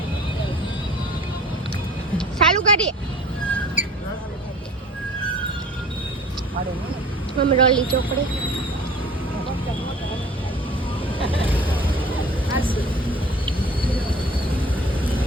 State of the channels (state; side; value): normal; both; correlation 0.46